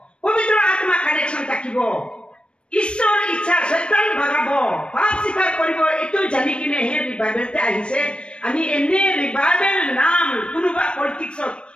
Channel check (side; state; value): right; late; 0.057 ms